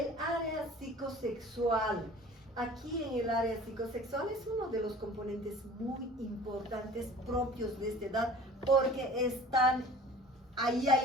área psicosexual. Aquí en el área psicosexual es uno de los componentes muy importantes propios de esta edad, porque ahí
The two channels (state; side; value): normal; both; correlation 0.44